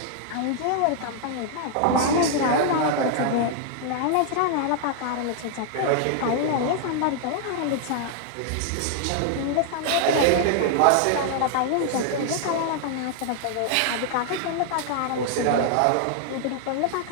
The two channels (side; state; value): both; different; correlation 0.00